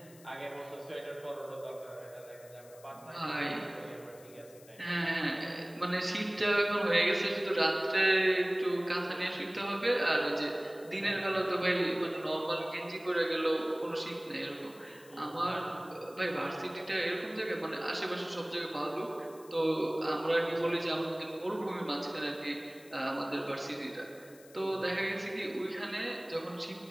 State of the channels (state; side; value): noise; left; hiss, 23 dB below the sound